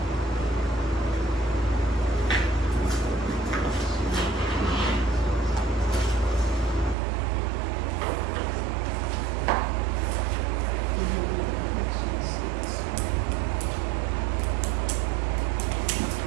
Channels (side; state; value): left; drops out; at 7.0 s